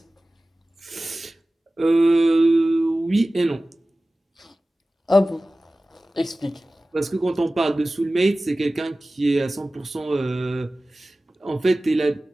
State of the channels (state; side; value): normal; both; correlation 0.97